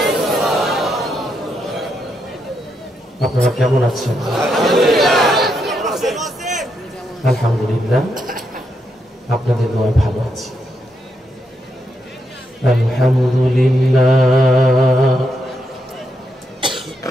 আপনারা কেমন আছেন? আলহামদুলিল্লাহ, আপনাদের দোয়ায় ভালো আছি। আলহামদুলিল্লাহ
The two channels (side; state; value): both; normal; correlation 0.81